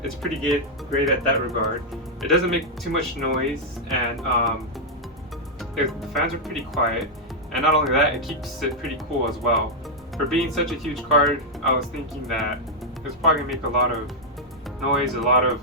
it's pretty good, great at that regard. It doesn't make too much noise, and the fans are pretty quiet, and not only that, it keeps it pretty cool as well. For being such a huge card, I was thinking that it was probably going to make a lot of noise, a lot of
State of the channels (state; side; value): normal; both; correlation -0.04